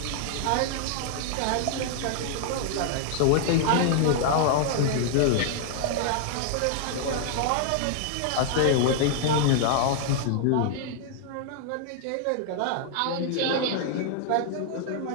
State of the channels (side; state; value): both; different; correlation -0.01